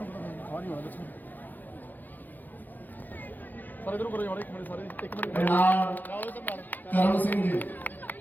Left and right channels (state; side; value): late; right; 0.085 ms